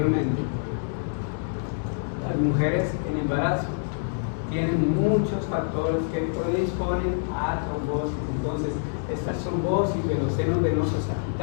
Las mujeres en embarazo tienen muchos factores que predisponen a trombosis. Entonces, estas trombosis de los senos venosos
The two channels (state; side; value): silent; right; 61 dB below the other